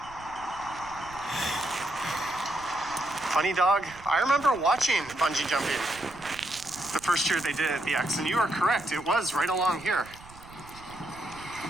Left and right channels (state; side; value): noise; right; rumble, 20 dB below the sound